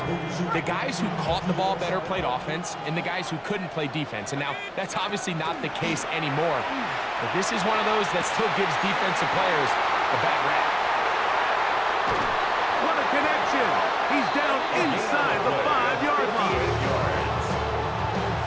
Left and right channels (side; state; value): both; identical; correlation 1.00